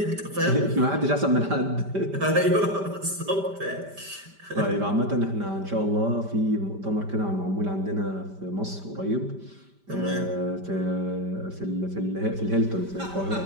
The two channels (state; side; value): late; left; 5.1 ms